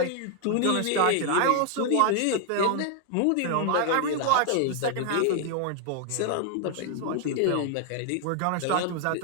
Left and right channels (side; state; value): both; different; correlation 0.00